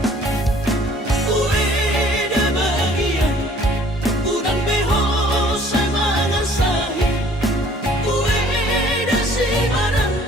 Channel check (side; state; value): both; normal; correlation 0.55